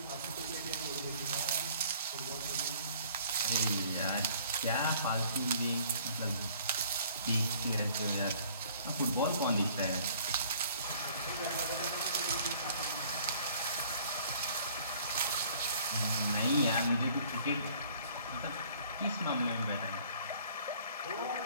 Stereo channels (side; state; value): both; inverted; correlation -0.55